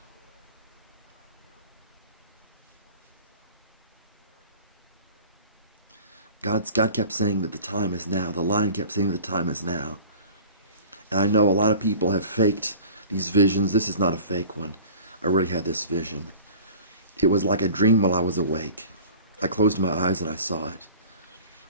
God kept saying that the time is now. The Lion kept saying that the time is now. And I know a lot of people have faked these visions. This is not a fake one. I really had this vision. It was like a dream while I was awake. I closed my eyes and I saw it.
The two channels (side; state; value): both; inverted; correlation -0.42